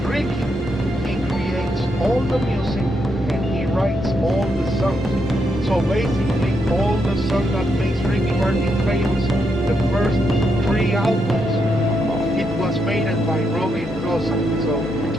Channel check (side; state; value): both; normal; correlation 0.80